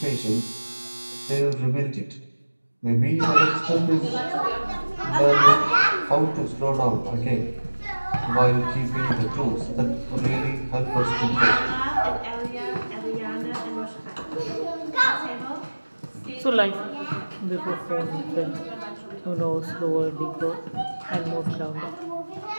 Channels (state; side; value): inverted; both; correlation -1.00